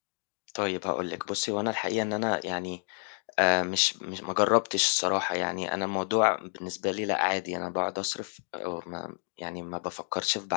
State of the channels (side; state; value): right; silent; 58 dB below the other